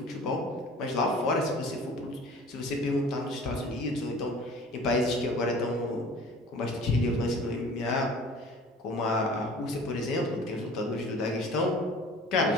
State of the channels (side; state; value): both; normal; correlation 0.45